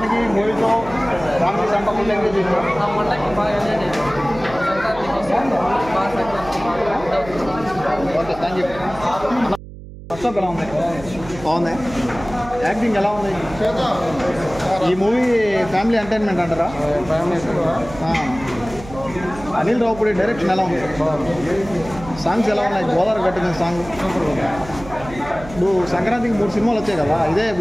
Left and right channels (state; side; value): noise; right; hum, 15 dB below the sound